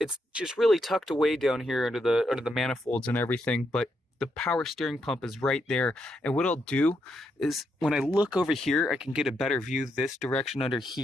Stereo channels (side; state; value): both; normal; correlation 0.80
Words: just really tucked away down here under the manifolds and everything, but the power steering pump is right there. And what I'll do is when I look over here, I can get a better view this direction under